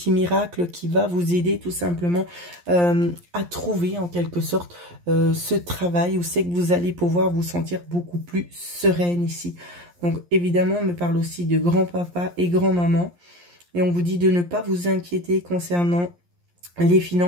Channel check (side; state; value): left; late; 11 ms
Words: miracle qui va vous aider tout simplement à trouver en quelque sorte ce travail où c'est que vous allez pouvoir vous sentir beaucoup plus sereine ici. Donc évidemment, on me parle aussi de grand-papa et grand-maman. Et on vous dit de ne pas vous inquiéter concernant les